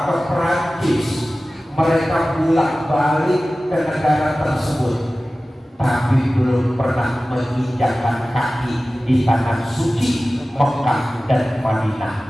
ke Perancis, mereka bolak-balik ke negara tersebut, tapi belum pernah menginjakkan kaki di tanah suci Mekah dan Madinah.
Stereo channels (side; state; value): both; normal; correlation 0.96